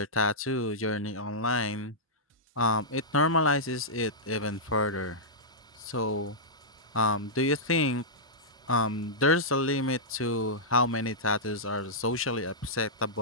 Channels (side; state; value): both; normal; correlation -0.12